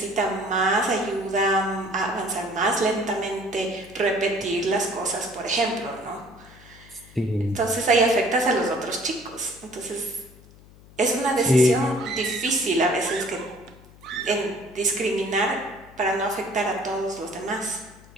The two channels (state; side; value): noise; left; hum, 23 dB below the sound